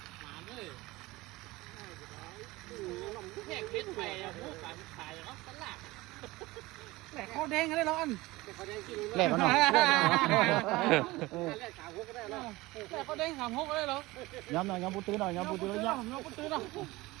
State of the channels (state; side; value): quieter; left; 20.4 dB